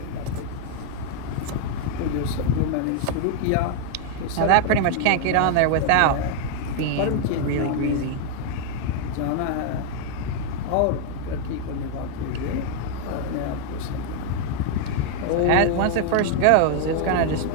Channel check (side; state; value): both; different; correlation 0.00